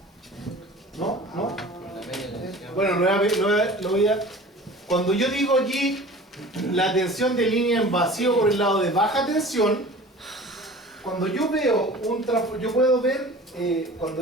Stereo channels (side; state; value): both; normal; correlation 0.41